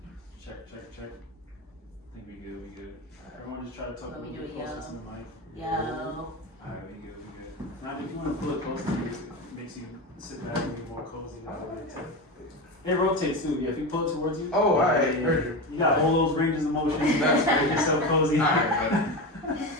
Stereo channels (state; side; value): normal; both; correlation 0.21